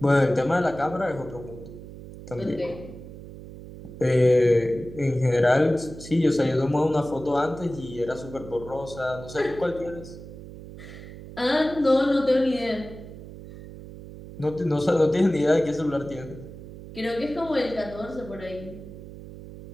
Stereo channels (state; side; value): noise; right; hum, 14 dB below the sound